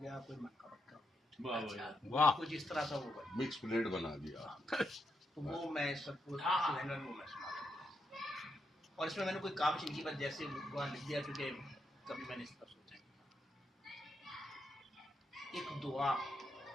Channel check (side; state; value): both; normal; correlation 0.82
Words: کوئی منقبت کا ہو گیا, کچھ اس طرح کا وہ مکس پلیٹ بنا دیا. تو وہ میں سب کو میں سنا اور اس میں نے کوئی کاوش نہیں کی, بس جیسے وہاں لکھ دیا کیونکہ کبھی میں نے اس پر سوچا. ایک دعا